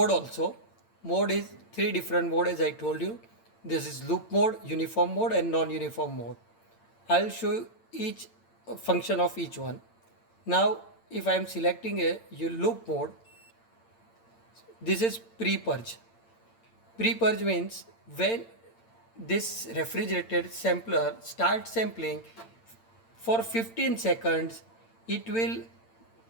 also. Mode is three different mode, as I told you. This is loop mode, uniform mode and non-uniform mode. I'll show you each function of each one. Now if I am selecting a loop mode, this is pre-purge. Pre-purge means when this refrigerated sampler starts sampling, for 15 seconds it will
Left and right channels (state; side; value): late; right; 8.8 ms